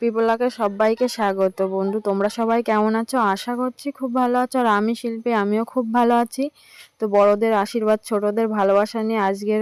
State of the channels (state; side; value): identical; both; correlation 1.00